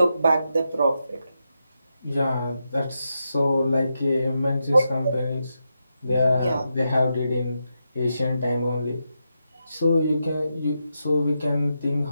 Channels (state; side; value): inverted; both; correlation -0.86